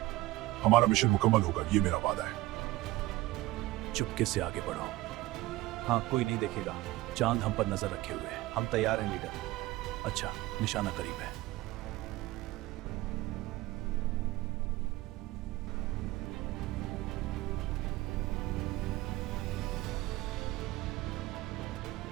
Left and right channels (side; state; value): left; quieter; 18.0 dB